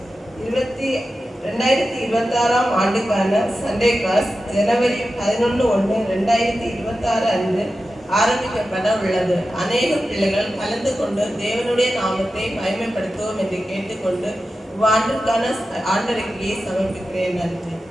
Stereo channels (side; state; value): both; normal; correlation 0.92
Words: 2026ஆம் ஆண்டுக்கான சண்டே கிளாஸ் ஜனவரி 11/1/2026 அன்று ஆரம்பிக்கப்பட உள்ளது. அநேக பிள்ளைகள் கலந்து கொண்டு தேவனுடைய நாமத்தை மகிமைப்படுத்துவோம் என்று கேட்டுக்கொண்டு இவ்வாண்டிற்கான ஆண்டறிக்கையை சமர்ப்பிக்கிறேன். நன்றி.